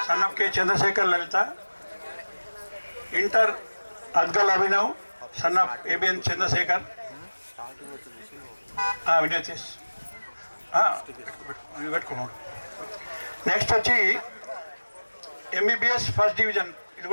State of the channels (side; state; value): both; inverted; correlation -1.00